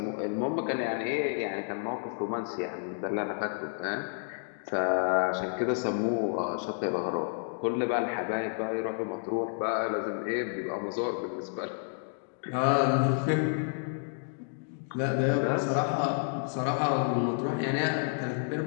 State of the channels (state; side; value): silent; right; digital silence